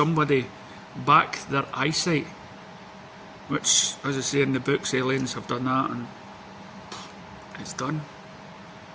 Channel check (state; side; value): identical; both; correlation 1.00